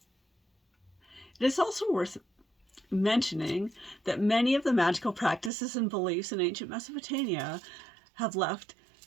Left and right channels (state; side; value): drops out; left; at 5.5 s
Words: It is also worth mentioning that many of the magical practices and beliefs in ancient Mesopotamia have left